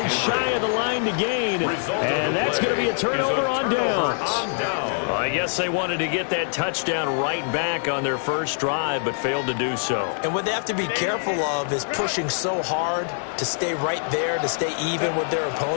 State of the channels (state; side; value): silent; right; digital silence